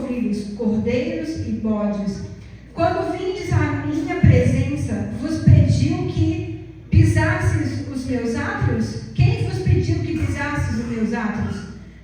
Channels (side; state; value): both; identical; correlation 1.00